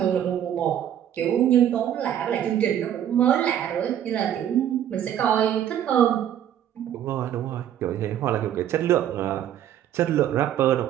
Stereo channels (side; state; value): left; quieter; 10.5 dB